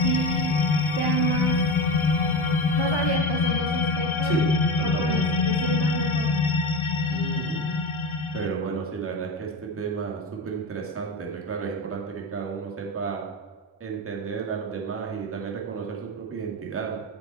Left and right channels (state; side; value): normal; both; correlation 0.22